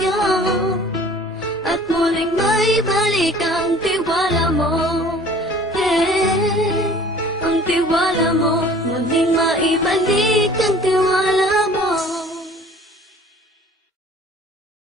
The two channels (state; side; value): normal; both; correlation 0.49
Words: at muling maibalik ang tiwala mo. Ang tiwala mo muling maibalik.